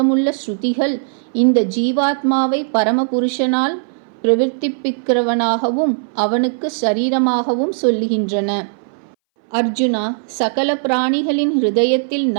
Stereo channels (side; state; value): left; silent; 63 dB below the other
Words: ஸ்ருதிகள் இந்த ஜீவாத்மாவை பரமபுருஷனால் பிரவர்த்திப்பிக்கிறவனாகவும் அவனுக்கு சரீரமாகவும் சொல்லுகின்றன. அர்ஜுனா, சகல பிராணிகளின் ஹிருதயத்தில்